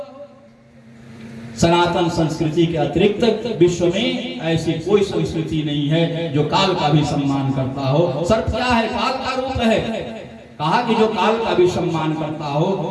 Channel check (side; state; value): both; identical; correlation 1.00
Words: सनातन संस्कृति के अतिरिक्त विश्व में ऐसी कोई संस्कृति नहीं है जो काल का भी सम्मान करता हो। सर्प क्या है? काल का रूप है। कहा कि जो काल का भी सम्मान करता हो,